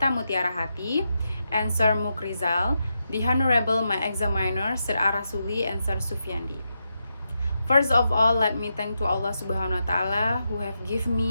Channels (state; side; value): inverted; both; correlation -0.85